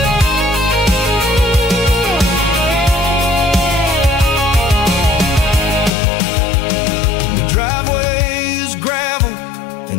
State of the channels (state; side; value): drops out; right; at 5.9 s